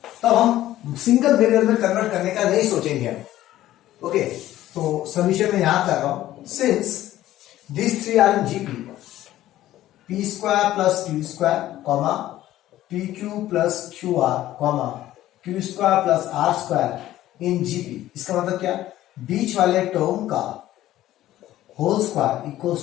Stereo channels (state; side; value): quieter; right; 14.2 dB